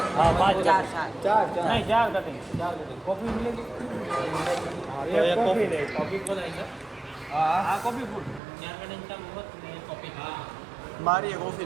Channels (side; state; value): left; drops out; at 8.4 s